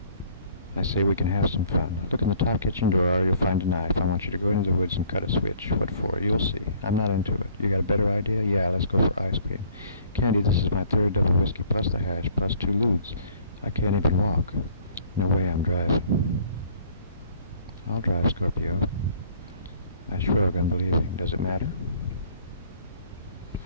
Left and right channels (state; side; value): inverted; both; correlation -0.57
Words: I say we can have some fun. Look in the top kitchen drawer. You'll find a knife. I want you to go into the woods and cut a switch. What for? You'll see. I'm not into it. You got a better idea? Yeah, let's go for ice cream. Candy, this is my third double whiskey plus the hash plus 2 lewds. I can't even walk. No way I'm driving. I'll drive, Scorpio. I shrug, unbelieving. Does it matter?